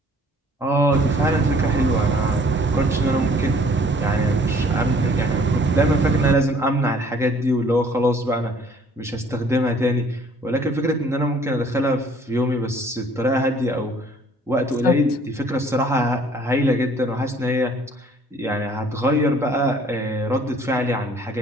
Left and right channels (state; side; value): normal; both; correlation 0.57